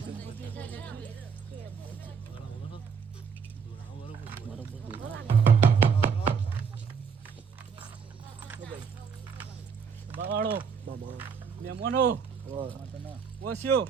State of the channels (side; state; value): left; quieter; 6.3 dB